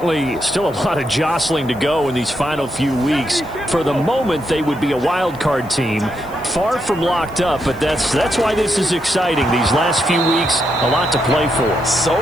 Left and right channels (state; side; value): noise; left; hiss, 25 dB below the sound